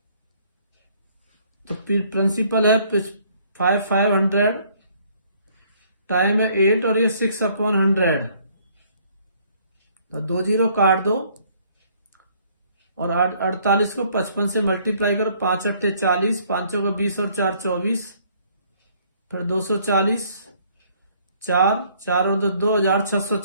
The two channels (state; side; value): inverted; both; correlation -0.63